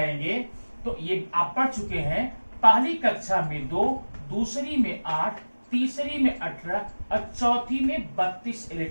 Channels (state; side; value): inverted; both; correlation -1.00